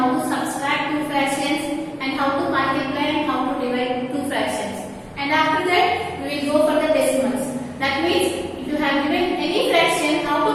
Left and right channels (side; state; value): both; identical; correlation 1.00